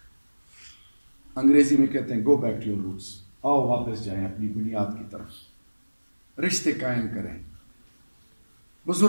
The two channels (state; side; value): inverted; both; correlation -1.00